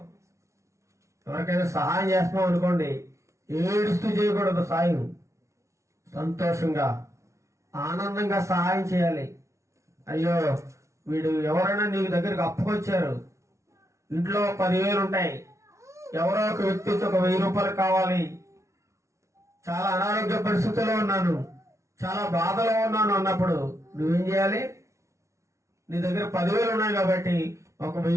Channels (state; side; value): late; left; 0.14 ms